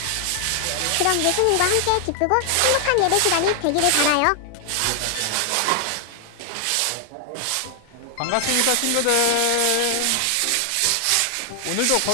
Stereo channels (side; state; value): both; different; correlation 0.00